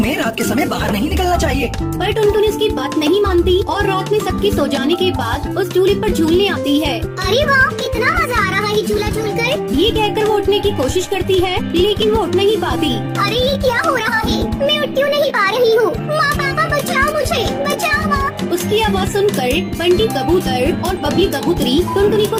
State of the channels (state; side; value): identical; both; correlation 1.00